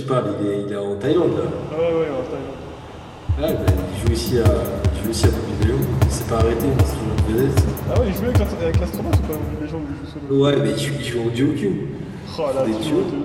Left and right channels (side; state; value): both; identical; correlation 1.00